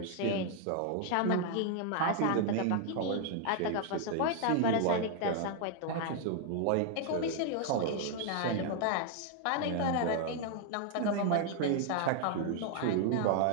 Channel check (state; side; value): different; both; correlation 0.00